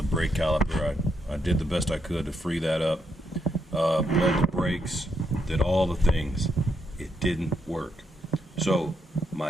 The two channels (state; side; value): normal; both; correlation 0.78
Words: brake caliper. I did the best I could to free that up. Bled the brakes, did all the things. It didn't work. So